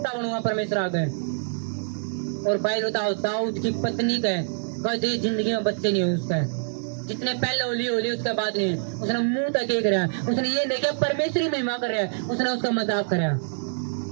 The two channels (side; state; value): left; silent; digital silence